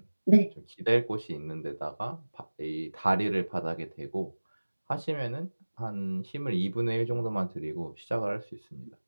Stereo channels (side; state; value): both; inverted; correlation -1.00